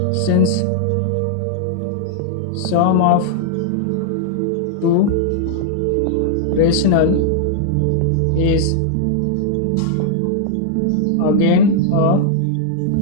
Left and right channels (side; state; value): both; different; correlation -0.01